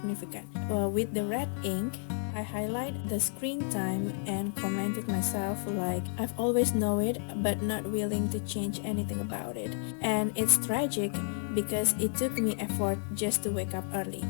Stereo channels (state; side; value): silent; right; 57 dB below the other